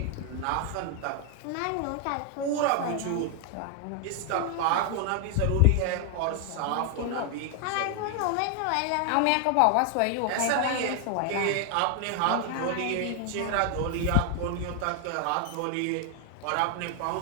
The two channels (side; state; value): both; different; correlation 0.00